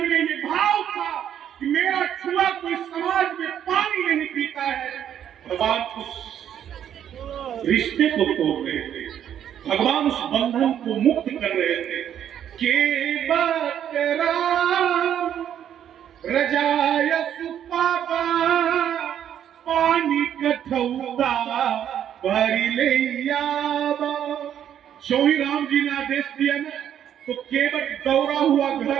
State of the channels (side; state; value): left; quieter; 9.8 dB